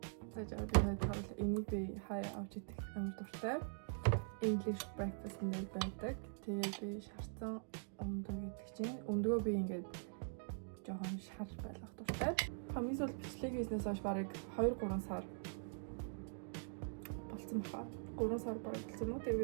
Зажаар би хавал энийг би хай авч идэх амар дуртай. English breakfast нэр байдаг. Тэгээд би шарцсан өндөө гэдэг чинь өндөө би ингээд жоохон шар байлгах дуртай. Хамгийн сүүл бичлэг хийснээс хойш барыг 2-3 сар болсон баха. 3 сар бараг болсон уу?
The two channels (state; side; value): silent; left; digital silence